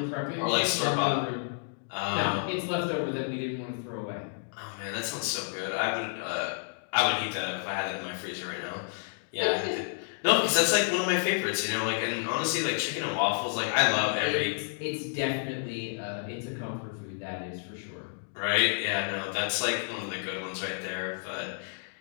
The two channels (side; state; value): right; silent; digital silence